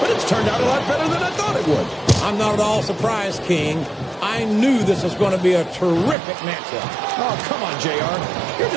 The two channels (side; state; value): left; drops out; at 6.2 s